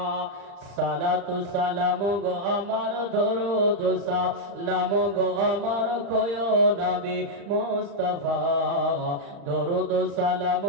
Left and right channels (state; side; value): late; left; 35 ms